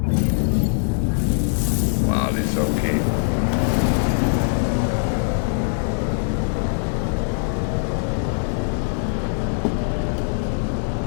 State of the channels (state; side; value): silent; right; 64 dB below the other